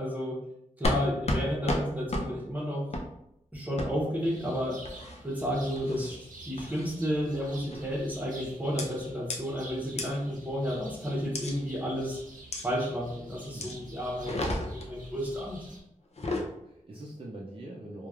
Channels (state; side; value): normal; both; correlation 0.73